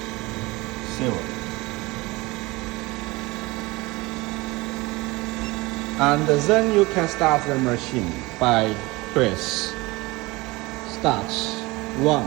And then you can start the machine by press start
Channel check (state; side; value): quieter; left; 22.5 dB